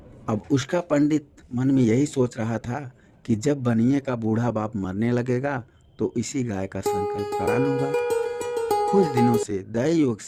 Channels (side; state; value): both; identical; correlation 1.00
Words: अब उसका पंडित मन में यही सोच रहा था कि जब बनिए का बूढ़ा बाप मरने लगेगा तो इसी गाय का संकल्प करा लूंगा। कुछ दिनों से दैव योग